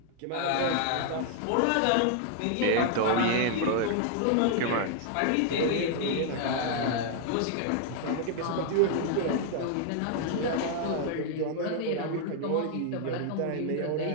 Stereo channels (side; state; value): both; different; correlation 0.00